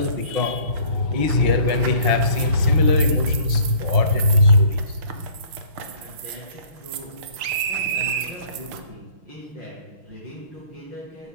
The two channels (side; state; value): left; late; 6.1 ms